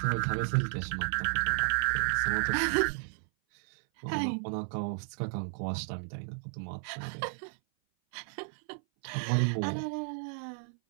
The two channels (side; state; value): left; silent; 56 dB below the other